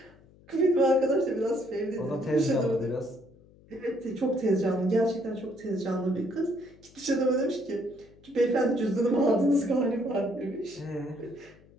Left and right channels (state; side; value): noise; left; hum, 26 dB below the sound